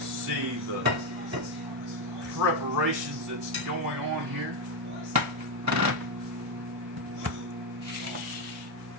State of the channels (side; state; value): both; normal; correlation 0.06